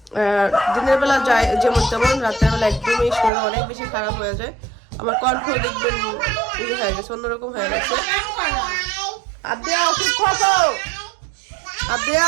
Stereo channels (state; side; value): drops out; left; at 3.3 s